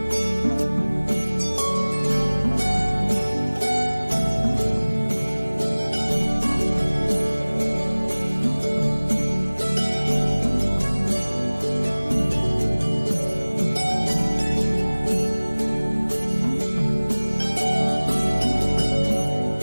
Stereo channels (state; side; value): inverted; both; correlation -1.00